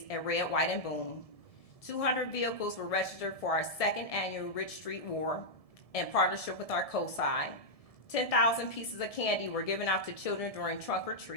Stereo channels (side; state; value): right; late; 1.7 ms